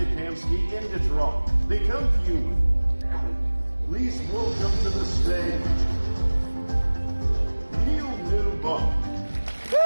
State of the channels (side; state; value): both; inverted; correlation -1.00